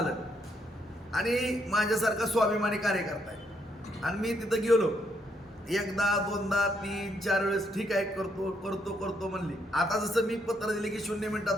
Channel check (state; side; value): normal; both; correlation 0.74